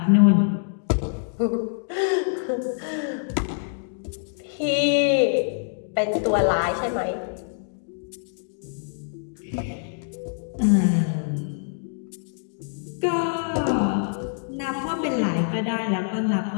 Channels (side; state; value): right; silent; digital silence